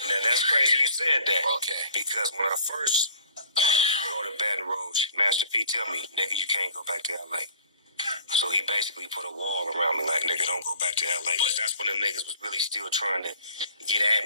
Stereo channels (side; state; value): both; inverted; correlation -0.53